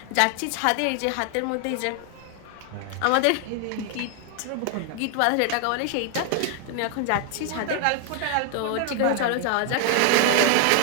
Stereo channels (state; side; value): different; both; correlation 0.00